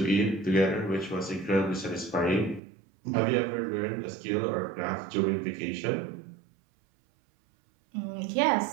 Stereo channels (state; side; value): drops out; left; at 2.6 s